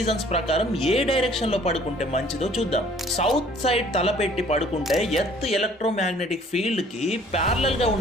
ప్రకారం ఏ డైరెక్షన్ లో పడుకుంటే మంచిదో చూద్దాం. సౌత్ సైడ్ తలపెట్టి పడుకుంటే ఎర్త్ ఎలక్ట్రోమాగ్నెటిక్ ఫీల్డ్ కి ప్యారలల్ గా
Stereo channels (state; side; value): normal; both; correlation 0.56